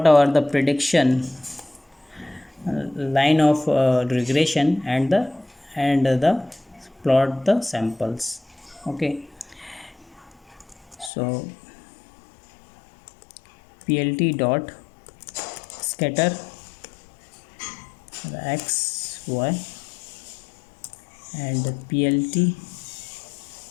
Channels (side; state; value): right; drops out; at 11.1 s